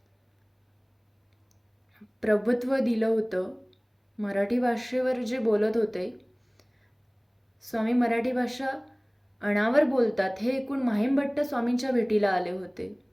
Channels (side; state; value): both; identical; correlation 1.00